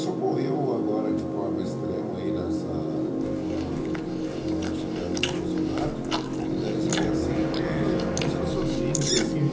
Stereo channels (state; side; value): identical; both; correlation 1.00